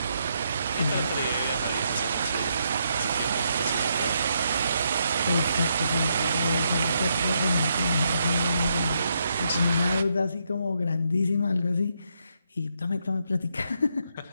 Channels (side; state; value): both; inverted; correlation -0.78